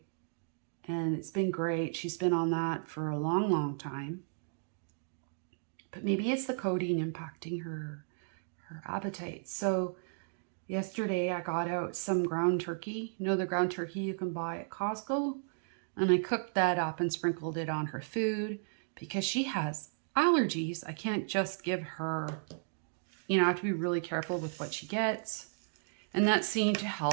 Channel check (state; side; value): silent; left; digital silence